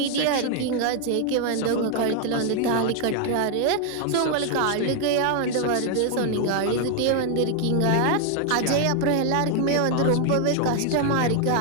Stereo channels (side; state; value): both; different; correlation 0.00